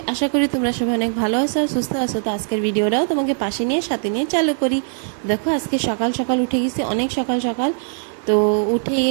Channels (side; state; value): left; silent; 63 dB below the other